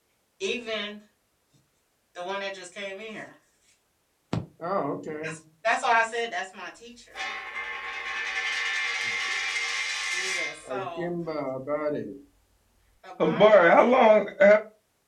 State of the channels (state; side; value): identical; both; correlation 1.00